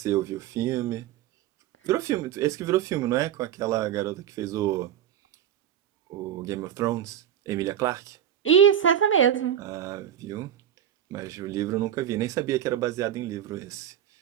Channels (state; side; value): quieter; left; 10.2 dB